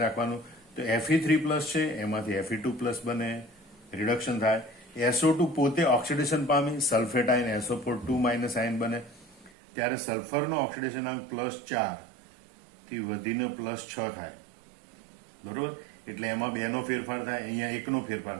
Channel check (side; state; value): left; drops out; at 9.5 s